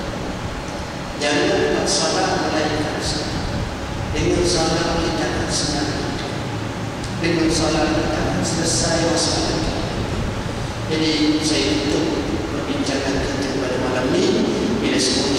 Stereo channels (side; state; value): both; identical; correlation 1.00